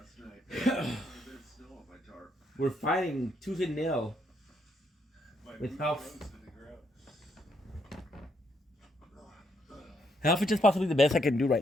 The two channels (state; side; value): normal; both; correlation 0.75